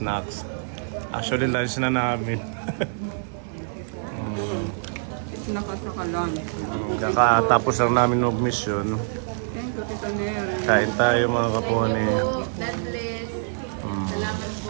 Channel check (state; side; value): silent; left; 62 dB below the other